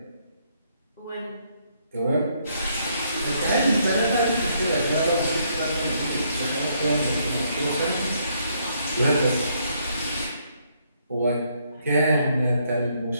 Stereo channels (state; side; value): inverted; both; correlation -0.72